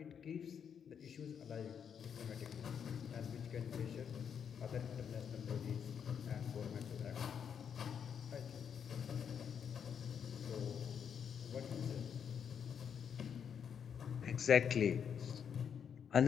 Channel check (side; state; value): right; quieter; 7.6 dB